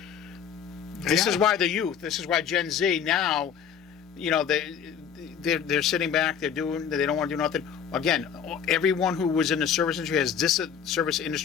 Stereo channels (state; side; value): quieter; right; 7.9 dB